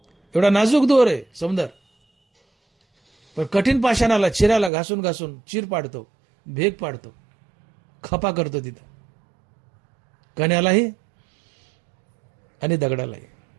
एवढा नाजूक दोर आहे सौंदर्य, पण कठीण पाषाणाला, चिऱ्याला घासून घासून चीर पाडतो, भेग पाडतो, खपा करतो तिथं, कण्यालाही आणि दगडालाही.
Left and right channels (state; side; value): drops out; left; at 4.7 s